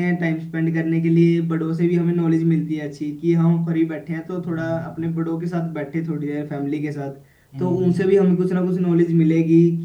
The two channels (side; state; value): both; identical; correlation 1.00